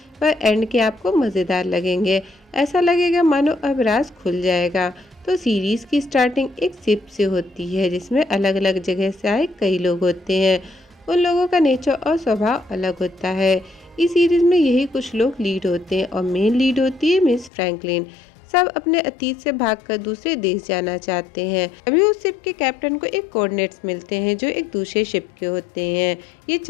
पर एंड के आपको मज़ेदार लगेंगे। ऐसा लगेगा मानो अब राज खुल जाएगा। तो सीरीज़ की स्टार्टिंग एक शिप से होती है, जिसमें अलग अलग जगह से आए कई लोग होते हैं। उन लोगों का नेचर और स्वभाव अलग होता है। इस सीरीज़ में यही कुछ लोग लीड होते हैं और मेन लीड होती है मिस फ्रैंकलिन। सब अपने अतीत से भागकर दूसरे देश जाना चाहते हैं। अभी उस शिप के कैप्टन को एक कोऑर्डिनेट्स मिलते हैं जो एक दूसरे शिप के होते हैं। ये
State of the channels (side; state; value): right; drops out; at 17.5 s